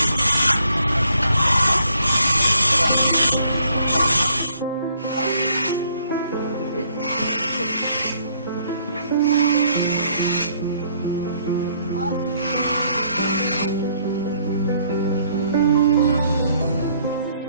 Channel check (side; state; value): both; inverted; correlation -0.67